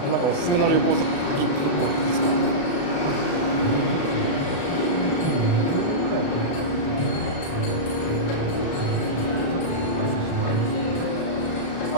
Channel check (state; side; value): late; right; 35 ms